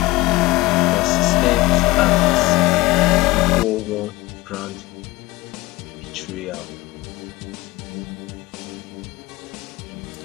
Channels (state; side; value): quieter; right; 20.3 dB